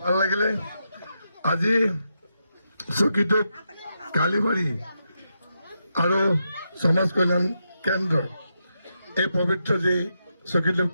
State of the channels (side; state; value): both; inverted; correlation -0.84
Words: ভাল লাগিলে আজি চকীটোক কালিবাৰী আৰু সমাজ কল্যাণ কেন্দ্ৰ এই পবিত্ৰ যি চকীটোক